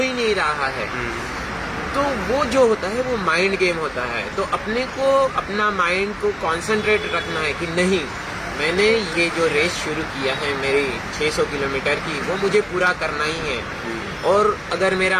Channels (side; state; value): both; identical; correlation 1.00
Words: नहीं रहा है। तो वो जो होता है वो माइंड गेम होता है। तो अपने को अपना माइंड को कॉन्सेंट्रेट रखना है कि नहीं मैंने ये जो रेस शुरू किया है मेरी 600 किलोमीटर की, वो मुझे पूरा करना ही है। और अगर